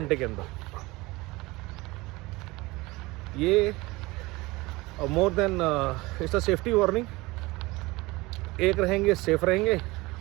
के अंदर। ये more than it's a safety warning. एक रहेंगे सेफ रहेंगे,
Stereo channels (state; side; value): quieter; left; 21.9 dB